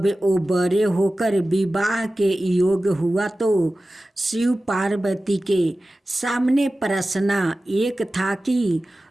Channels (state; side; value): normal; both; correlation 0.95